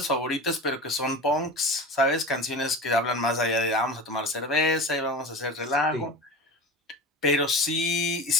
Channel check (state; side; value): normal; both; correlation 0.31